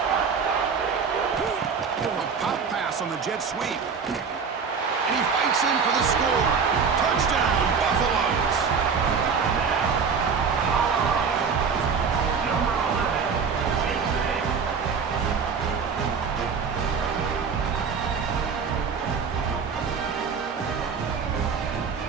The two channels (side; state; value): left; quieter; 5.8 dB